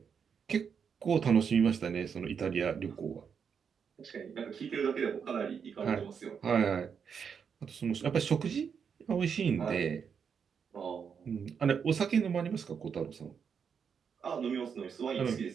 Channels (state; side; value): quieter; left; 6.8 dB